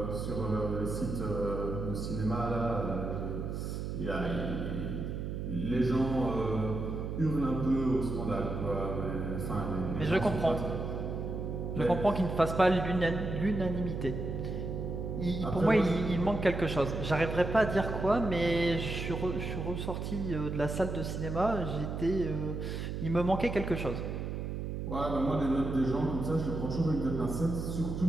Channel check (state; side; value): noise; right; hum, 4 dB below the sound